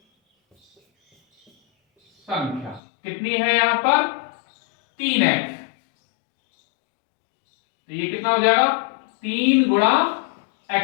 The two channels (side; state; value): right; drops out; at 2.8 s